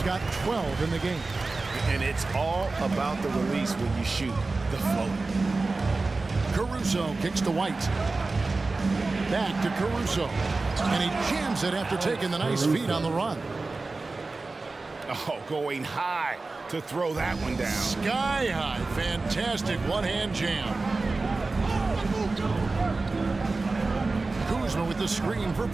got 12 in the game. And it's all about the release when you shoot the float. Caruso kicks to White. Back to Caruso. And he jams it after taking the nice feed on the run. Oh, going high to throw that one down. Sky high. Fantastic one-hand jam. Kuzma with the screen for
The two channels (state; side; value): quieter; left; 3.6 dB